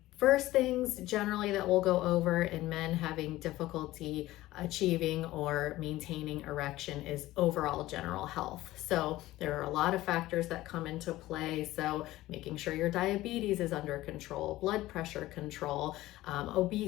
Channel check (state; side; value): quieter; right; 16.8 dB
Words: First things generally that we'll go over in men having difficulty achieving or maintaining erection is overall general health. So there are a lot of factors that come into play. So making sure your diabetes is under control, blood pressure control,